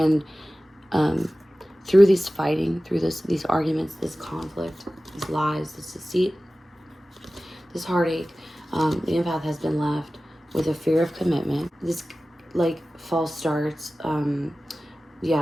through these fighting, through these arguments, this conflict, these lies, this deceit, this heartache, the empath has been left with a fear of commitment. This like false starts,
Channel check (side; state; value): both; normal; correlation 0.96